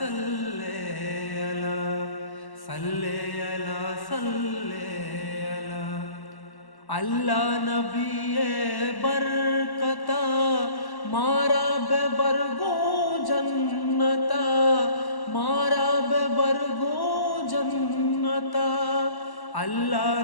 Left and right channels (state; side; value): late; right; 1.1 ms